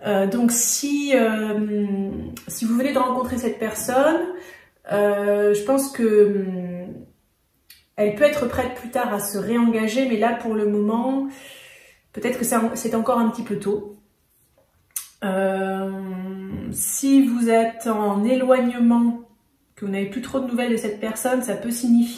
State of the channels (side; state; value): both; identical; correlation 1.00